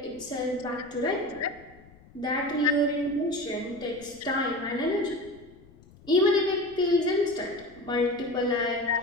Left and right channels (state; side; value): noise; left; rumble, 24 dB below the sound